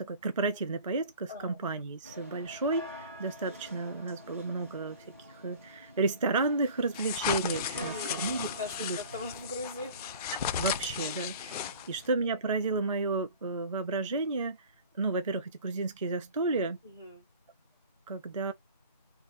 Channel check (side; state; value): both; inverted; correlation -0.42